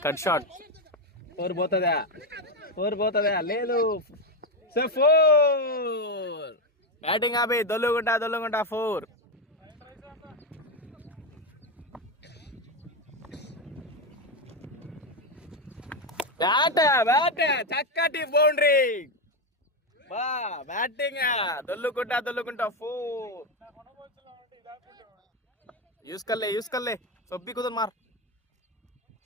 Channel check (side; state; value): both; normal; correlation 0.09